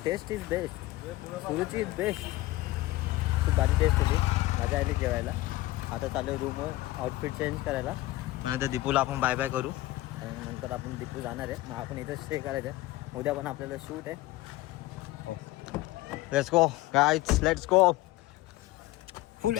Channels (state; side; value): quieter; right; 17.9 dB